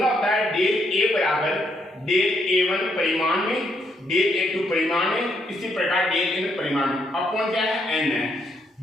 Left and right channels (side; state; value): both; normal; correlation 0.75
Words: होता है डेल ए बराबर डेल A1 परिमाण में, डेल A2 परिमाण में, इसी प्रकार डेल N परिमाण में, अपॉन क्या है? N है।